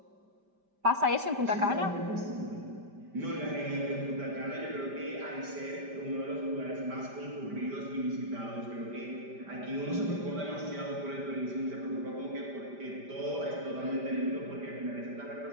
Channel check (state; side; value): late; left; 5.1 ms